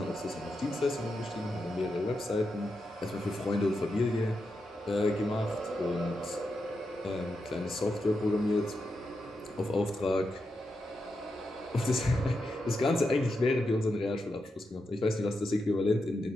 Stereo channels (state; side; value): normal; both; correlation 0.86